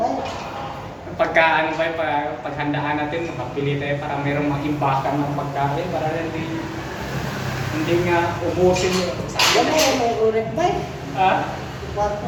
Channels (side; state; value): both; identical; correlation 1.00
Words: Pagka ano ba, paghandaan natin, makapili tayo para mayroong mag-imbakan ng pagkain para hindi nga ubusin yung sa Yan mo, may ulit ba? Ha?